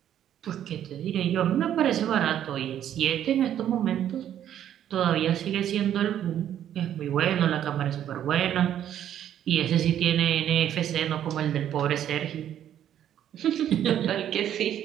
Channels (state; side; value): quieter; left; 10.6 dB